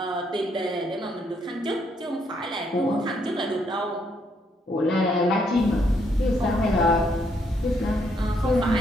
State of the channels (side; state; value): both; normal; correlation 0.73